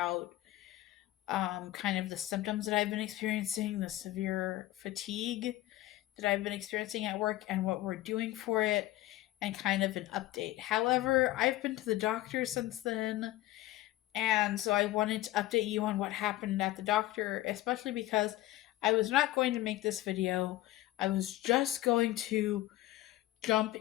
kind of the symptoms that I've been experiencing, the severe fatigue that I've been experiencing at work, and what we're doing for it, and kind of an update. However, I've been to the doctor since then, and so I wanted to update you on what happened at the doctor, especially because I was not going to make this video. I was just going to jump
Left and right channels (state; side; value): quieter; right; 16.0 dB